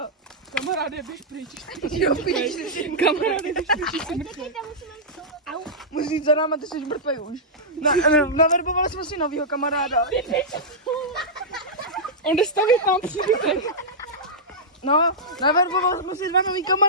Kamaráde, běž pryč. Jo, píš. Kamaráde, běž pryč, jsi mrtvý. Musíš jít za náma, ty jsi mrtvý už. Naverbovali jsme si novýho kamaráda. On jde stavit nám příbytek. No, naverbovali jsme si 2 nový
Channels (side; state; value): both; normal; correlation -0.11